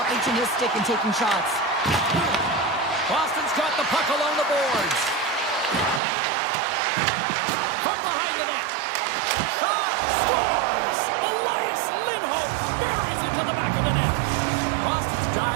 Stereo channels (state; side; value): drops out; left; at 6.0 s